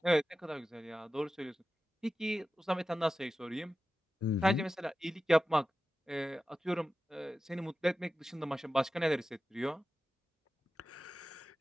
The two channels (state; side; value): normal; both; correlation 0.93